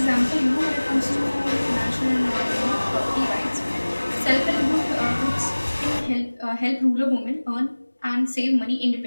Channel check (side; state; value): both; inverted; correlation -1.00